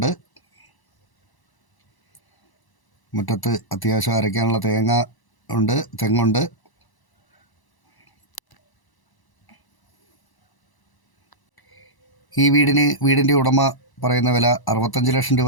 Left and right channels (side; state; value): right; late; 1.0 ms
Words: മുറ്റത്ത് അത്യാവശ്യം അരയ്ക്കാനുള്ള തെങ്ങുണ്ട്. ഈ വീടിൻ്റെ ഉടമ പറയുന്ന വില 65 ലക്ഷം